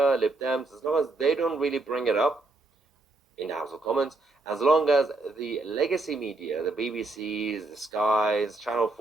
Lib Dems, as long as they don't really bring it up in the House of Commons, as long as the legacy media, the BBCs, the Skies, Channel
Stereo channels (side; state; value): left; quieter; 3.1 dB